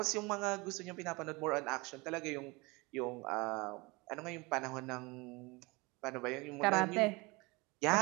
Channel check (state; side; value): quieter; left; 25.5 dB